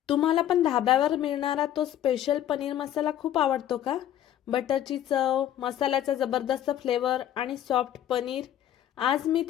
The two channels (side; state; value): right; quieter; 11.4 dB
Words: तुम्हाला पण धाब्यावर मिळणारा तो स्पेशल पनीर मसाला खूप आवडतो का? बटरची चव, मसाल्याचा जबरदस्त फ्लेवर आणि सॉफ्ट पनीर. आज मी